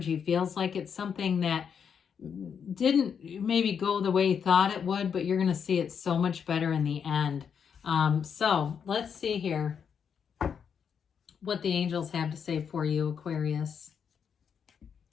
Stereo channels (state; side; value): quieter; right; 7.2 dB